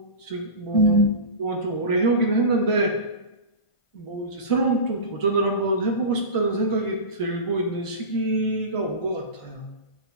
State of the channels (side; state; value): right; late; 1.5 ms